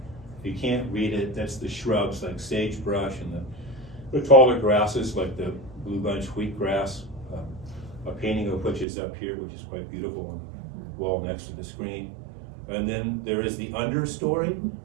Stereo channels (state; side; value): drops out; left; at 8.8 s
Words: If you can't read it, that's the shrubs like sagebrush and the taller grasses like the blue bunch wheatgrass, a painting of which is up here, which is quite beautiful on the wall next to the screen. And then there is the understory,